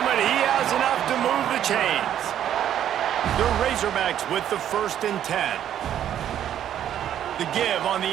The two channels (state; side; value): quieter; left; 10.5 dB